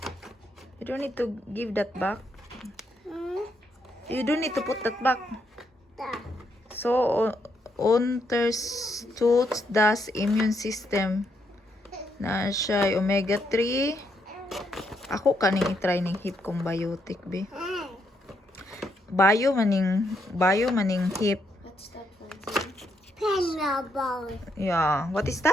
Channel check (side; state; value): both; normal; correlation 0.77